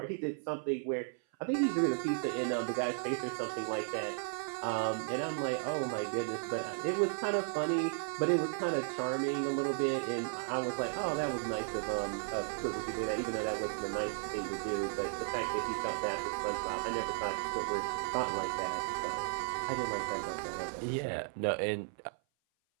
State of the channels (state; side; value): silent; left; 54 dB below the other